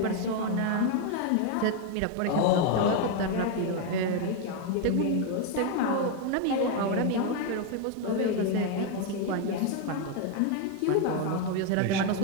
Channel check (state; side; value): different; both; correlation 0.01